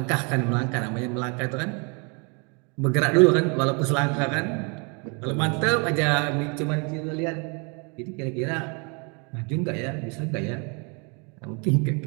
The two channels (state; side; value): quieter; left; 33.5 dB